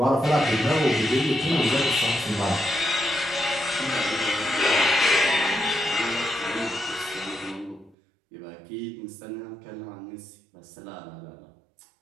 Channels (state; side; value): drops out; left; at 8.0 s